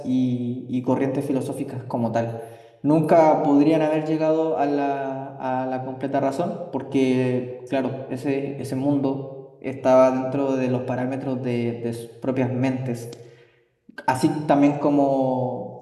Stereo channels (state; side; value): identical; both; correlation 1.00